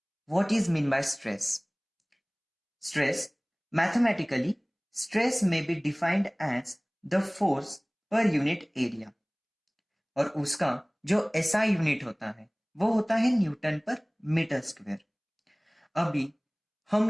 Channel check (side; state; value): both; identical; correlation 1.00